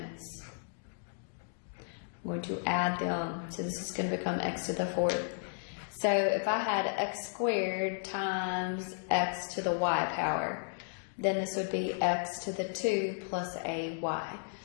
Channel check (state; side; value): silent; right; digital silence